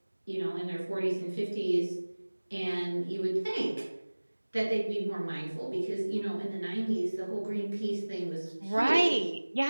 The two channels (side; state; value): both; inverted; correlation -1.00